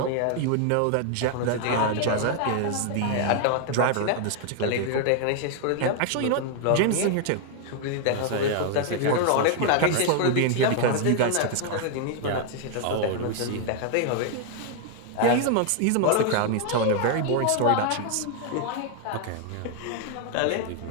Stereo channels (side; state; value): both; different; correlation 0.00